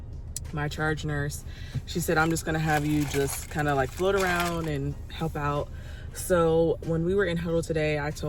my charge nurse, she said, I'm just gonna have you just kind of like float around and help out. So when we were in huddle today, I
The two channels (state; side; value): identical; both; correlation 1.00